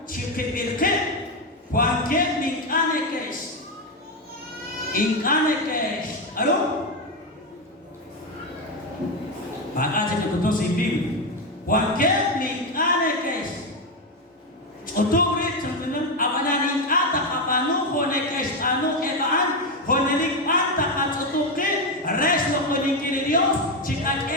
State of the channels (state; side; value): normal; both; correlation 0.09